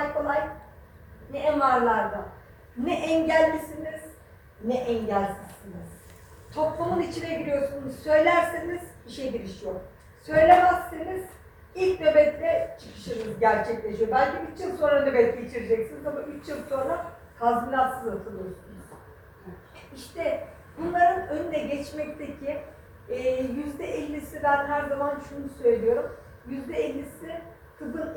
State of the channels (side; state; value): both; identical; correlation 1.00